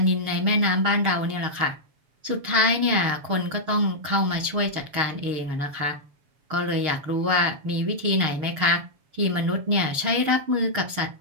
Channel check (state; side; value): late; left; 7.2 ms